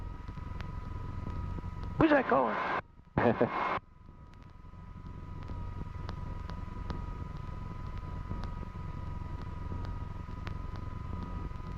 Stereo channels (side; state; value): both; identical; correlation 1.00